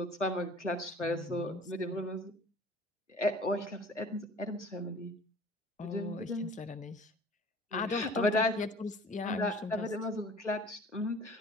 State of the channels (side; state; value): both; normal; correlation 0.48